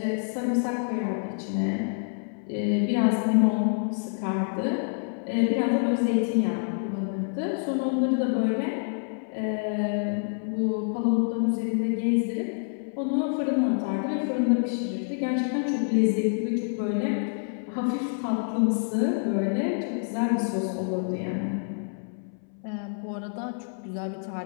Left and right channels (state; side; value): silent; right; 60 dB below the other